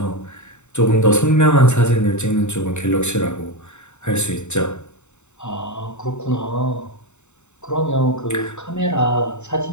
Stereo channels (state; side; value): late; right; 0.83 ms